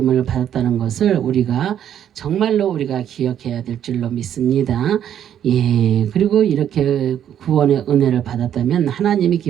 받았다는 것을 정말로 우리가 기억해야 될 줄로 믿습니다. 예, 그리고 이렇게 구원의 은혜를 받았다면 하나님이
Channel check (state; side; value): quieter; left; 9.9 dB